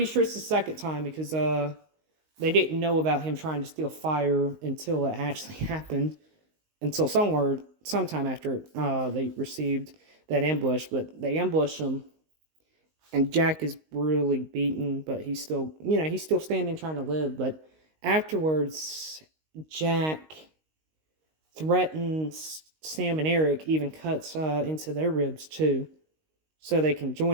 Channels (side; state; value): left; late; 19 ms